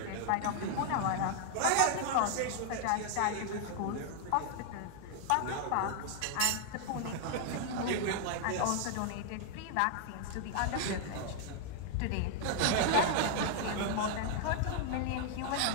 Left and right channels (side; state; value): both; different; correlation 0.00